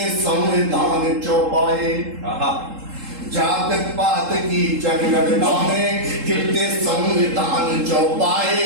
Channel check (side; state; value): left; late; 3.8 ms